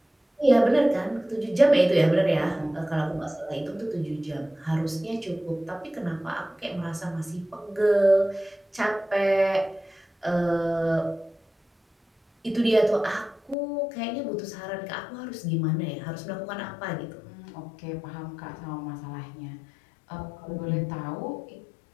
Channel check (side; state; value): right; drops out; at 13.6 s